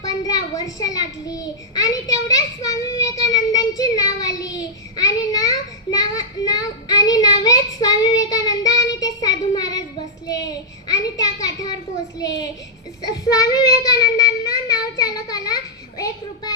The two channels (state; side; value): normal; both; correlation -0.09